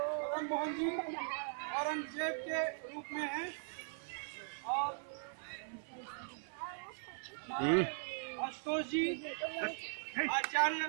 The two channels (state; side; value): silent; left; 51 dB below the other